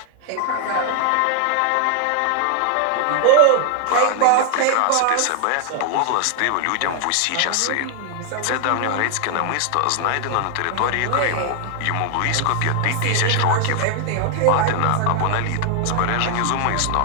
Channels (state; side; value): different; both; correlation 0.00